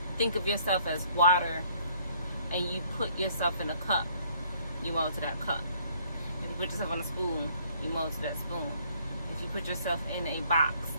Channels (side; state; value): both; inverted; correlation -0.62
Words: think of yourself as water and you put yourself in a cup, you mold to that cup. If you put yourself on a spoon, you mold to that spoon. If you put yourself in a box,